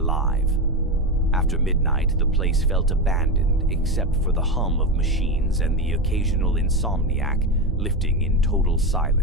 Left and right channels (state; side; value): normal; both; correlation 0.16